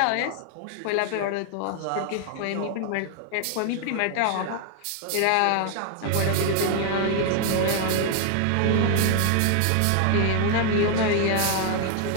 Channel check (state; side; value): different; both; correlation 0.00